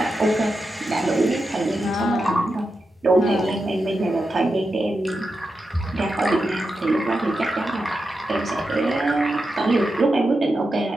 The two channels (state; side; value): normal; both; correlation 0.89